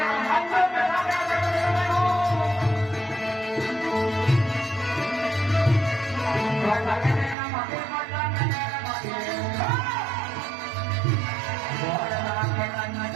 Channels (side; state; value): left; drops out; at 7.4 s